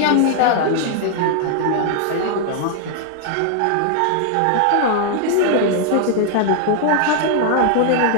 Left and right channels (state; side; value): different; both; correlation 0.00